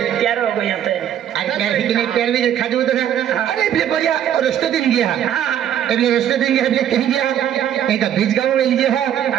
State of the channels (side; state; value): left; quieter; 10.2 dB